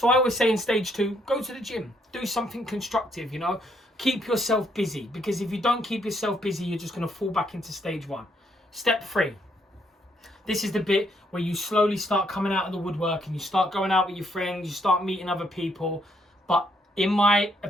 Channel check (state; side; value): normal; both; correlation 0.72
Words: I always say in stage 2, go to the gym. Do something constructive, you know. Keep yourself busy. Because if you don't keep yourself busy, you're just going to fall back into stage 1. Step 3. This is the bit where you slowly start coming out of the woodwork and you start going out with your friends, you start meeting other people. But in my